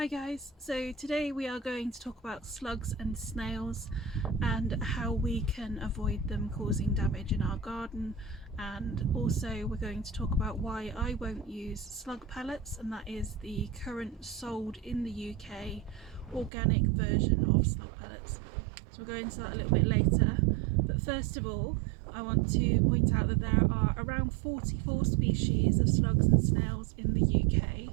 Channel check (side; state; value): left; drops out; at 16.5 s